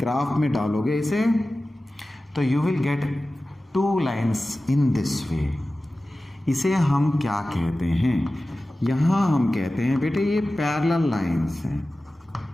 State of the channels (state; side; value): normal; both; correlation 0.96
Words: में डालोगे इसे, तो you will get 2 lines in this way. इसे हम क्या कहते हैं? यहां हम कहते हैं बेटे ये पैरेलल लाइन्स हैं।